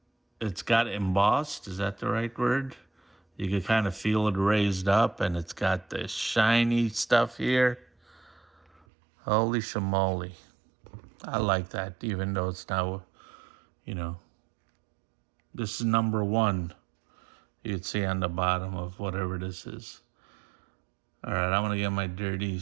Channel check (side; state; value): left; drops out; at 8.8 s